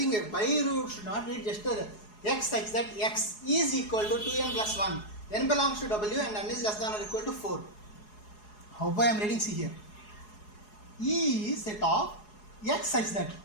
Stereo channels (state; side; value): late; right; 4.8 ms